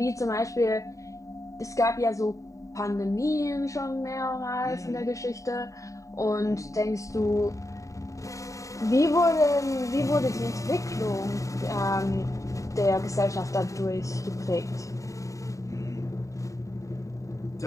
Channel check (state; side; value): late; right; 0.16 ms